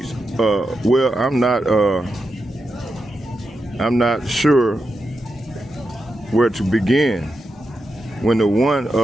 well, I'm not sure where to begin. When the one,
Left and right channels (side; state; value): both; normal; correlation 0.87